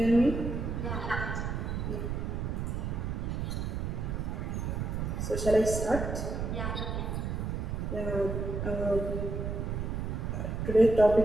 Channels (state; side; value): noise; right; rumble, 2 dB below the sound